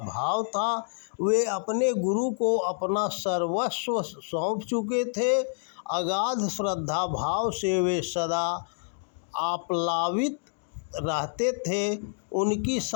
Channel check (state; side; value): silent; right; digital silence